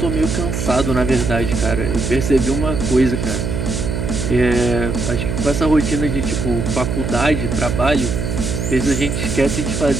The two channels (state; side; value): noise; right; hum, 2 dB below the sound